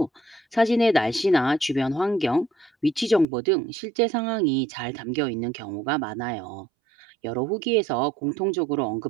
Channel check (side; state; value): left; drops out; at 3.2 s